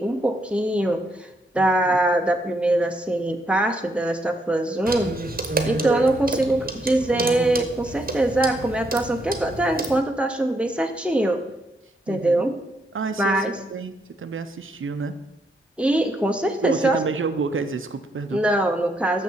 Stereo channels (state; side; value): normal; both; correlation 0.76